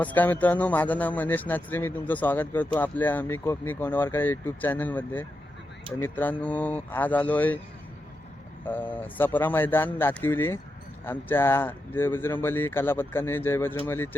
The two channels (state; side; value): normal; both; correlation 0.87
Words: मित्रांनो, माझं नाव मनीष नाचरे. मी तुमचं स्वागत करतो आपल्या मी कोकणी कोंडवारकर यूट्यूब चॅनलमध्ये. तर मित्रांनो, आज आलो आहे सपरा मैदान दातिवली. आमच्या जय बजरंगबली कला पथकाने जय बजरंगबली